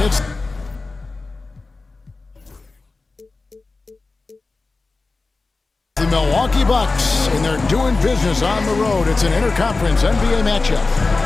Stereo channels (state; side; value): quieter; right; 3.7 dB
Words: It's the Milwaukee Bucks, and they're doing business on the road. It's an interconference NBA matchup.